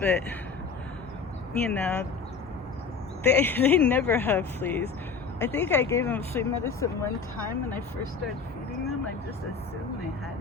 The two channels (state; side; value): quieter; right; 5.2 dB